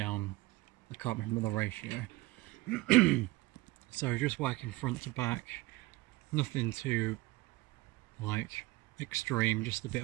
I can't remember the ratio. So just working front to back, nothing too like extreme, just a bit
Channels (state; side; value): quieter; left; 20.5 dB